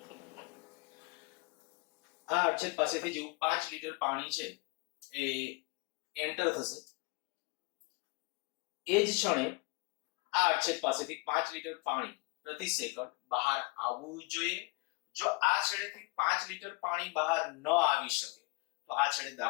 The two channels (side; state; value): right; quieter; 26.3 dB